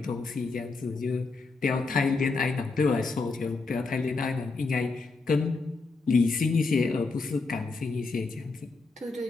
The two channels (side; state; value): right; quieter; 4.0 dB